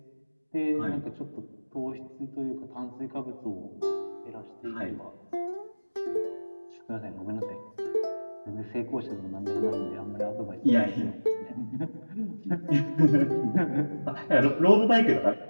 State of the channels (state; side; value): inverted; both; correlation -1.00